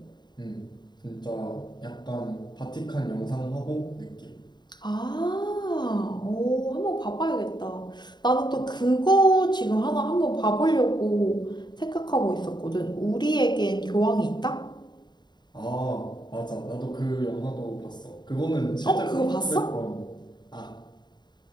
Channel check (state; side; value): late; right; 0.21 ms